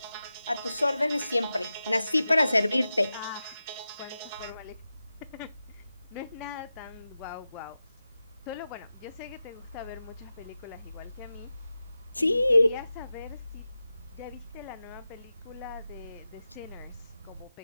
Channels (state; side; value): inverted; both; correlation -0.92